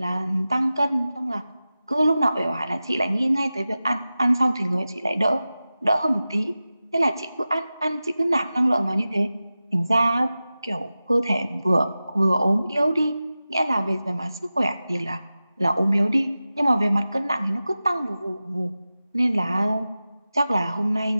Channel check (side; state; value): both; inverted; correlation -0.95